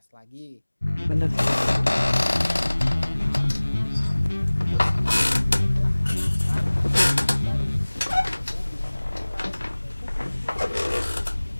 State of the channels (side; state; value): both; inverted; correlation -1.00